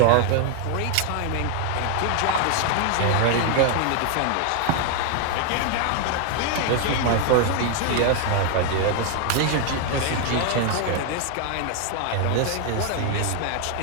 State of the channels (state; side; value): different; both; correlation 0.00